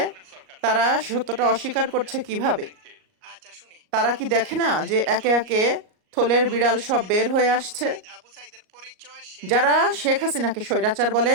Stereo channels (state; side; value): late; left; 38 ms